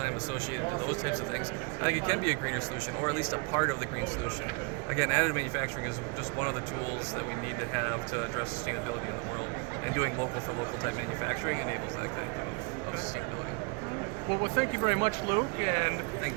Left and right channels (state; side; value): quieter; left; 31.5 dB